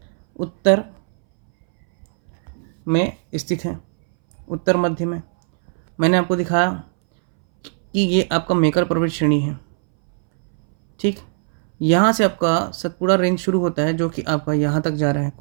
उत्तर में स्थित है, उत्तर मध्य में। मैंने आपको दिखाया कि ये आपका मेकर पर्वत श्रेणी है, ठीक। यहाँ से आपका सतपुड़ा रेंज शुरू होता है, जो कि आपका यहाँ तक जा रहा है।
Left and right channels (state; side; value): silent; left; 64 dB below the other